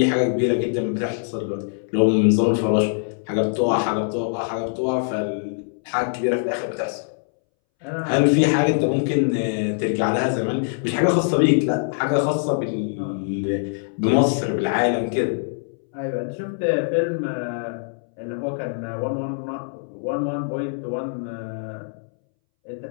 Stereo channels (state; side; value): silent; right; 63 dB below the other